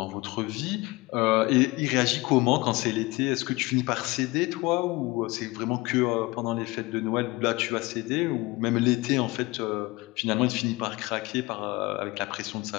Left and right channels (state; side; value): quieter; right; 22.5 dB